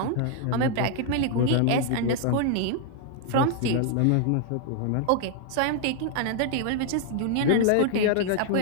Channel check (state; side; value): different; both; correlation 0.00